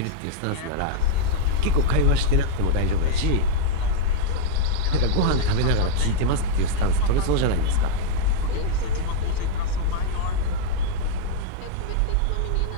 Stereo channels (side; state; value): both; different; correlation -0.01